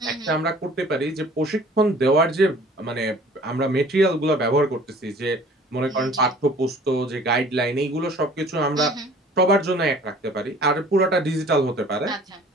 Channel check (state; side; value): normal; both; correlation 0.50